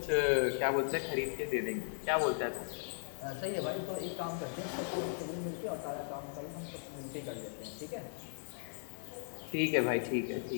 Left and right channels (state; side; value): silent; right; digital silence